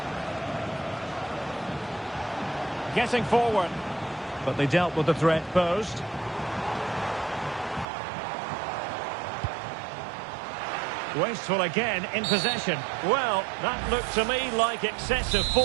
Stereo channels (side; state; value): left; drops out; at 7.9 s